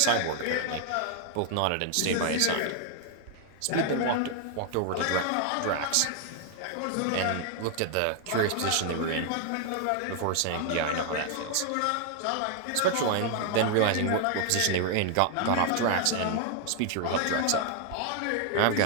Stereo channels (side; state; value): both; different; correlation 0.00